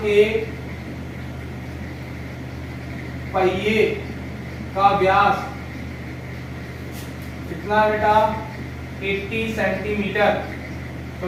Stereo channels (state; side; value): identical; both; correlation 1.00